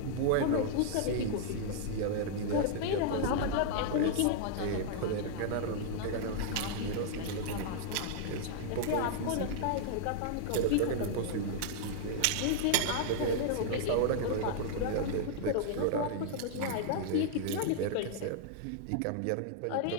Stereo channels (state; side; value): different; both; correlation -0.01